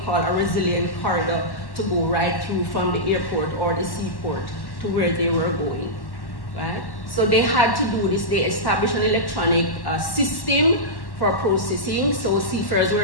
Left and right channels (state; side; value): late; right; 1.1 ms